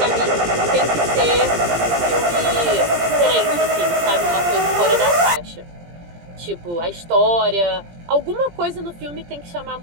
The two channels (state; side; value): late; left; 17 ms